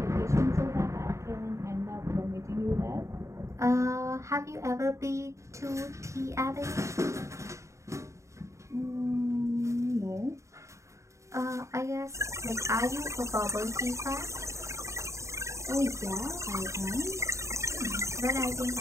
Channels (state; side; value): late; left; 0.14 ms